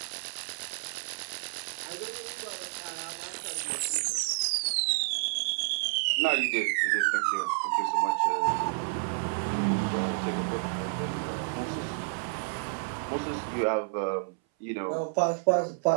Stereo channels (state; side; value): silent; left; 58 dB below the other